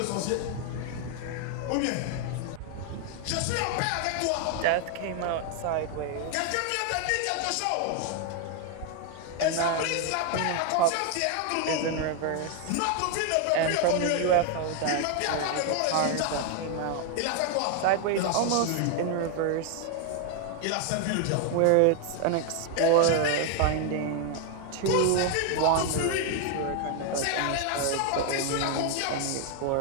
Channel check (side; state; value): both; different; correlation 0.01